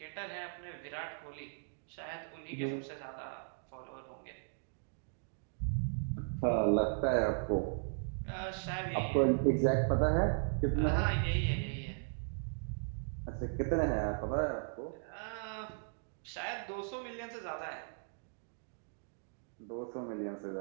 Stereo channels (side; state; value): left; silent; digital silence